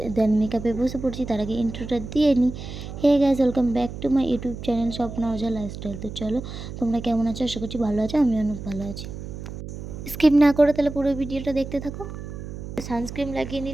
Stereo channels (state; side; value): noise; right; hum, 10 dB below the sound